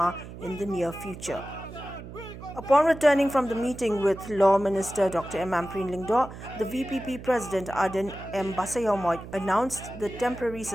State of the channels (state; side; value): noise; right; hum, 13 dB below the sound